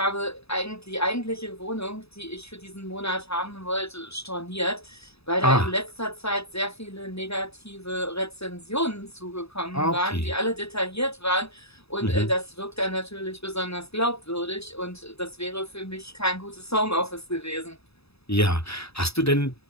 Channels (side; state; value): right; late; 0.78 ms